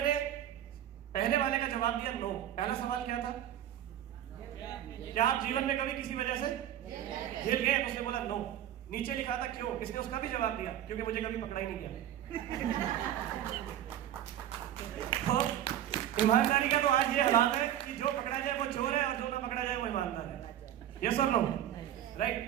ने पहले वाले का जवाब दिया नो। पहला सवाल क्या था, क्या आप जीवन में कभी किसी वजह से हिल गए, तो उसने बोला नो। नीचे लिखा था क्यों, इसने उसका भी जवाब दिया क्योंकि मुझे कभी पकड़ा ही नहीं गया। तो ईमानदारी का तो आज ये हालात है कि जो पकड़ा जाए वो चोर है और जो ना पकड़ा जाए वो ईमानदार है। यस और नो, राइट।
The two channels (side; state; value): left; quieter; 11.5 dB